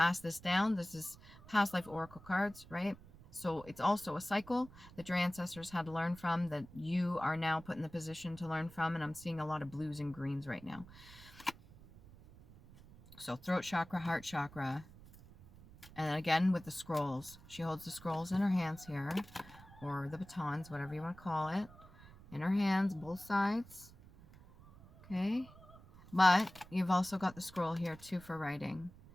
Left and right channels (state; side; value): noise; right; rumble, 20 dB below the sound